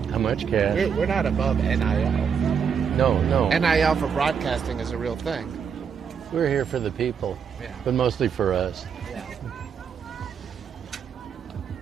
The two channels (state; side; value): quieter; left; 6.9 dB